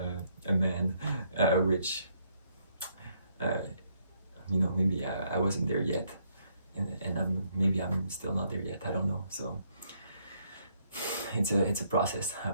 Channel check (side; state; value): both; inverted; correlation -0.71